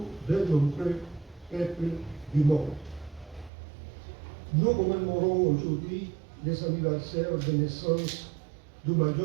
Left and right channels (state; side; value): drops out; left; at 3.5 s